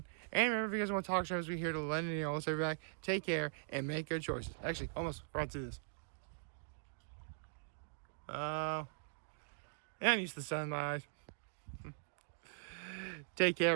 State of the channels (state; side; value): silent; left; digital silence